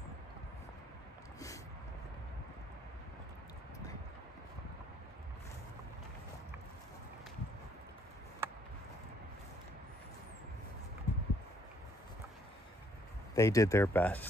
They did their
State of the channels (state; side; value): normal; both; correlation 0.66